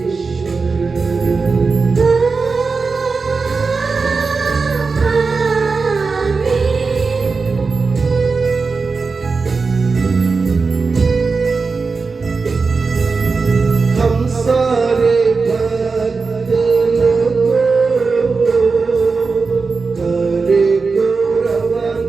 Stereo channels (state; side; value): quieter; left; 4.5 dB